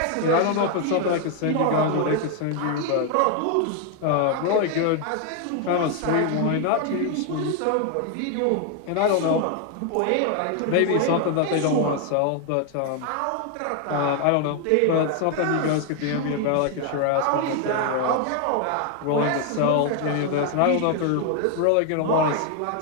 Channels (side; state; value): both; different; correlation 0.00